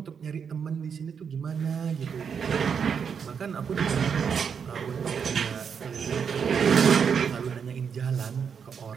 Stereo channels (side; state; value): left; quieter; 6.8 dB